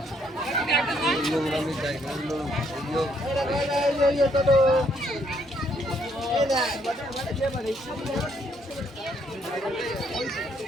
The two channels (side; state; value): both; normal; correlation 0.70